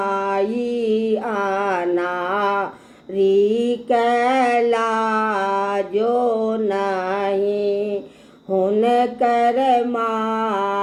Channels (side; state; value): both; identical; correlation 1.00